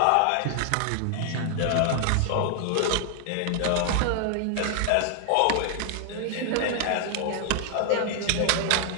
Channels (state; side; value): different; both; correlation 0.00